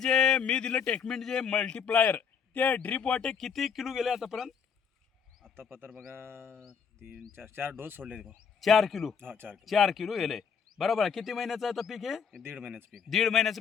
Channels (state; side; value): quieter; right; 6.7 dB